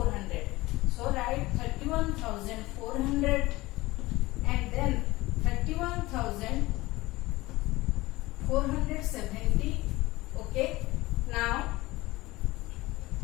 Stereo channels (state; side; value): quieter; right; 19.7 dB